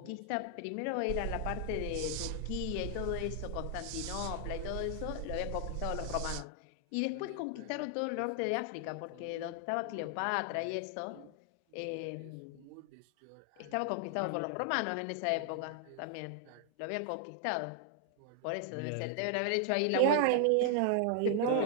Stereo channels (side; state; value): both; different; correlation 0.00